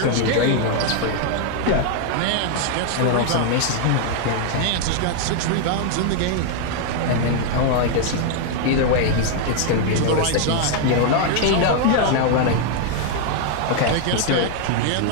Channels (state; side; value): different; both; correlation 0.00